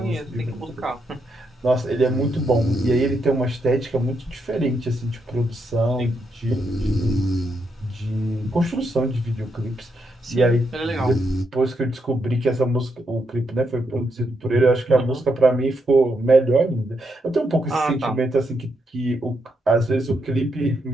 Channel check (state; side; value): normal; both; correlation 0.80